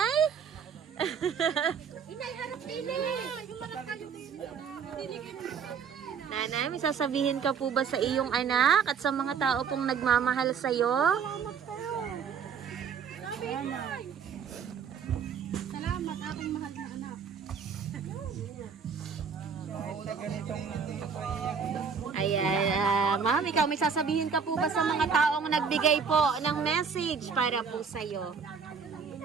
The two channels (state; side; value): quieter; left; 6.4 dB